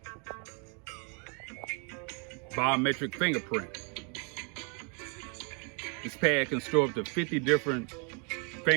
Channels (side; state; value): left; quieter; 36.4 dB